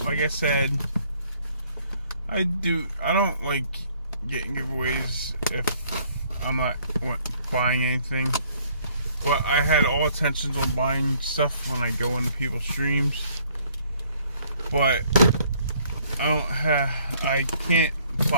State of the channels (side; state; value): both; inverted; correlation -0.63